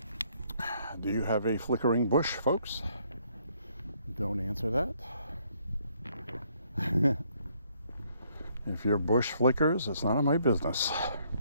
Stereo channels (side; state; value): both; inverted; correlation -0.68